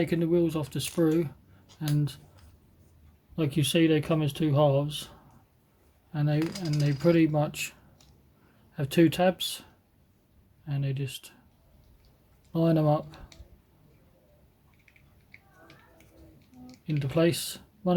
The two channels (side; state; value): both; identical; correlation 1.00